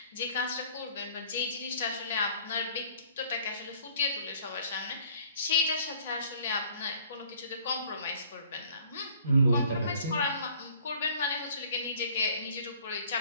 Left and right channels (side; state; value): both; inverted; correlation -0.55